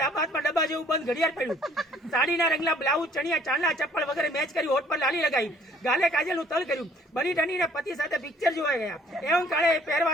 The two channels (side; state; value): both; normal; correlation 0.58